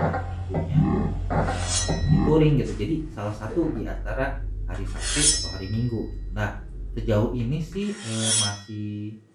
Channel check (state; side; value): identical; both; correlation 1.00